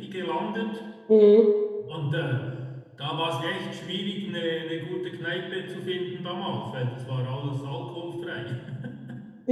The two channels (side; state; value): both; identical; correlation 1.00